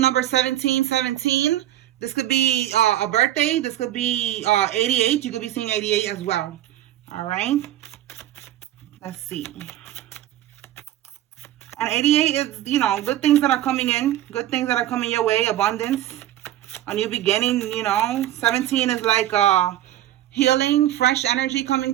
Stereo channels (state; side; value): quieter; left; 13.2 dB